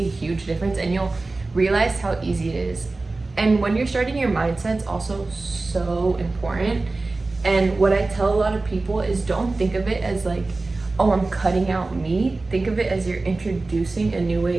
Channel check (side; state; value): left; quieter; 3.4 dB